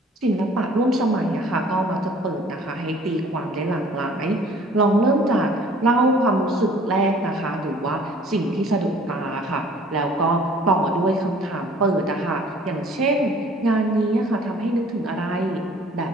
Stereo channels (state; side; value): normal; both; correlation 0.53